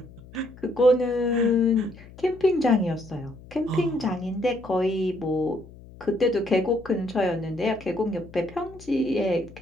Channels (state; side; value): noise; left; hum, 20 dB below the sound